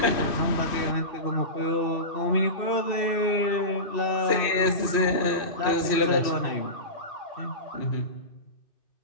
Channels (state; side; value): late; right; 2.5 ms